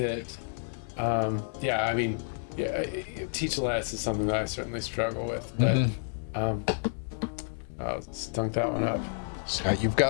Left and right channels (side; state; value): right; silent; 58 dB below the other